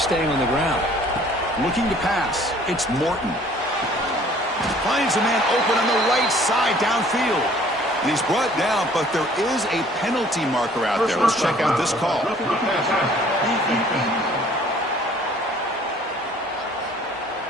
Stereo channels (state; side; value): normal; both; correlation 0.55